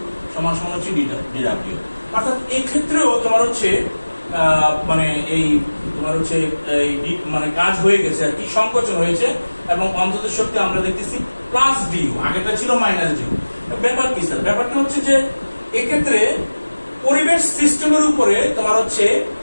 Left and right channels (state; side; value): inverted; both; correlation -1.00